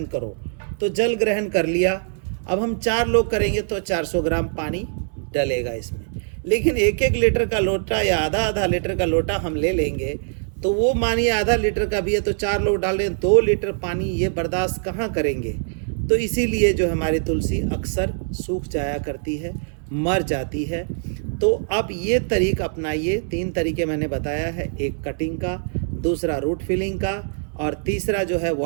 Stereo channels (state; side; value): silent; left; 64 dB below the other